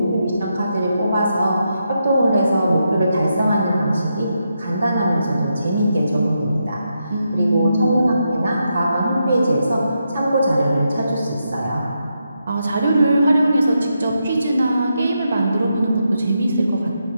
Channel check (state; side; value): inverted; both; correlation -0.83